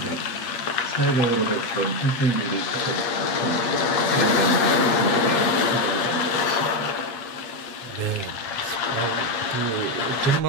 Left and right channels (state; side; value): late; right; 8.5 ms